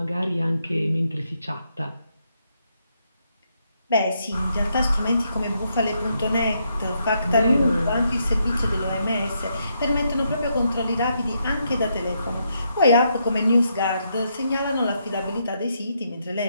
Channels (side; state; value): both; inverted; correlation -0.78